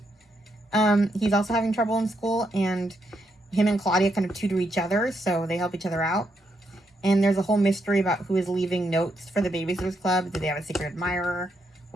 He's also having trouble in school, and him and Claudia kind of tutor each other, so they help each other out. And there's a whole mystery about who is leaving notes for the Babysitters Club. Do they have a secret admirer?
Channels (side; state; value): both; normal; correlation 0.79